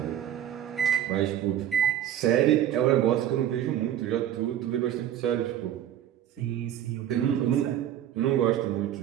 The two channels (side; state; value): left; quieter; 11.0 dB